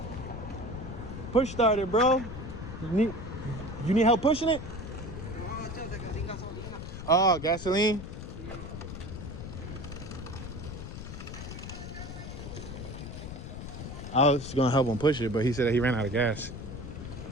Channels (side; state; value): left; noise; rumble, 9 dB below the sound